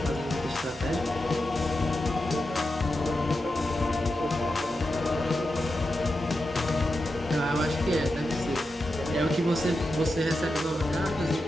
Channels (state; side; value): normal; both; correlation 0.89